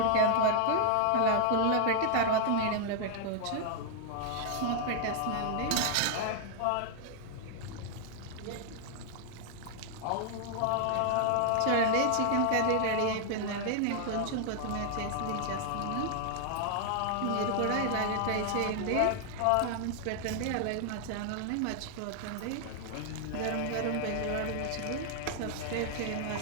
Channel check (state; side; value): different; both; correlation 0.00